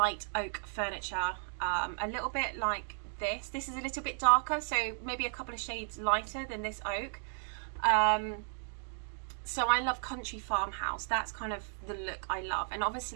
oak furniture, a little bit like this. This is a little bit darker, so maybe a couple of shades lighter than this oak. So I love country farmhouse. That's kind of the look I love. And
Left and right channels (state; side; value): silent; left; digital silence